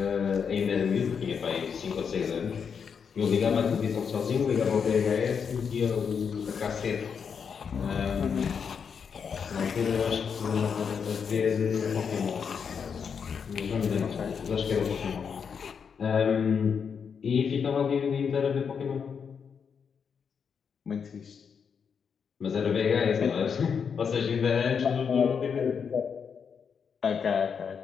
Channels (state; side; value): quieter; right; 6.6 dB